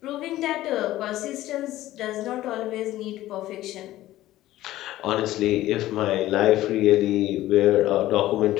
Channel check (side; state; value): right; quieter; 15.2 dB